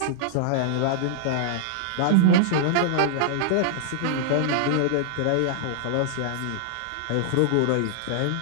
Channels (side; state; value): both; different; correlation -0.01